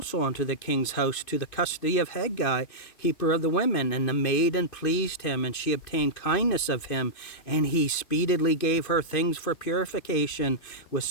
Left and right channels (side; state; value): right; late; 2.5 ms